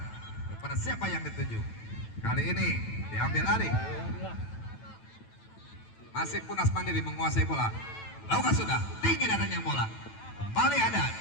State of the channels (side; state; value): right; late; 9.0 ms